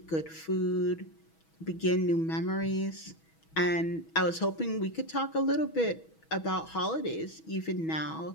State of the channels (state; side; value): late; right; 6.2 ms